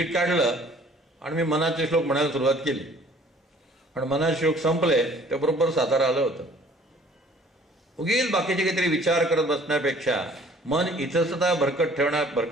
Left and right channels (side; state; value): both; normal; correlation 0.54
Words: काढलं आणि मी मनाचे श्लोक म्हणायला सुरुवात केली. पण मनाचे श्लोक संपले त्याबरोबर सातारा आलं होतं. उगीच बाकीचे काहीतरी विचार करत बसण्यापेक्षा, मन इथंसुद्धा